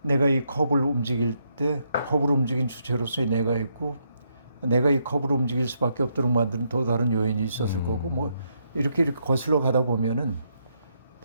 내가 이 컵을 움직일 때 컵을 움직인 주체로서의 내가 있고 내가 이 컵을 움직일 수밖에 없도록 만드는 또 다른 요인이 있었을 거고 뭐 이렇게 거슬러 가다 보면은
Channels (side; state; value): both; inverted; correlation -0.76